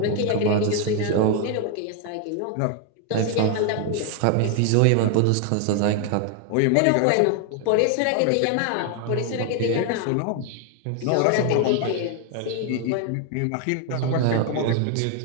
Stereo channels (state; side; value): different; both; correlation 0.01